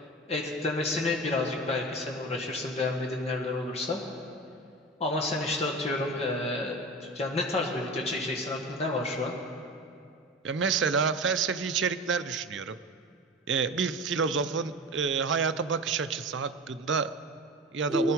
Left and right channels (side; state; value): both; normal; correlation 0.31